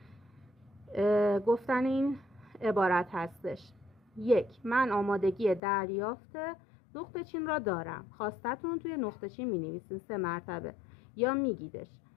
گفتن این عبارت هستش: 1. من آمادگی دریافت نقطه چین را دارم. خواستتون توی نقطه چین می نویسین 3 مرتبه یا میگیدش.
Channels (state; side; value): drops out; right; at 5.6 s